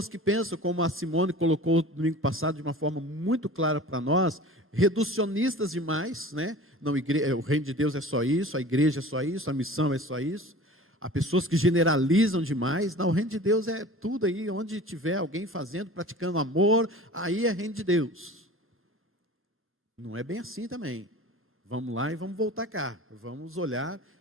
que pensam, como a Simone colocou no domingo passado de uma forma muito clara para nós, reducionistas demais, né? Não, o reino de Deus é só isso, a igreja é só isso, a missão é só isso. Há pessoas que generalizam demais. Não, o reino de Deus é tudo aí, onde tiver alguém fazendo, praticando amor, aí é reino de Deus. Não é bem assim também. Vamos lá e vamos voltar cá. Vamos olhar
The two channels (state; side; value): normal; both; correlation 0.40